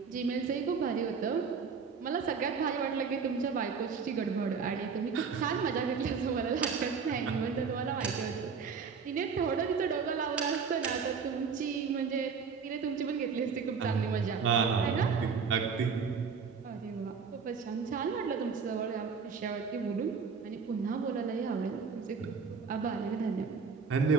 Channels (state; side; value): quieter; left; 5.7 dB